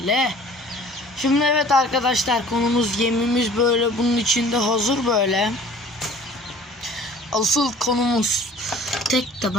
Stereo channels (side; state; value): both; normal; correlation 0.48